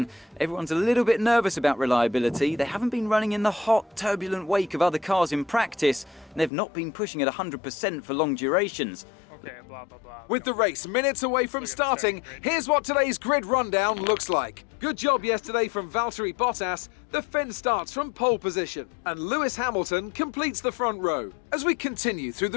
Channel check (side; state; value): right; drops out; at 6.5 s